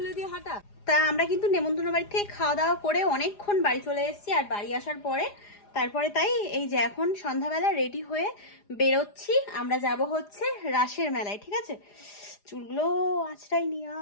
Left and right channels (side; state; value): right; late; 4.9 ms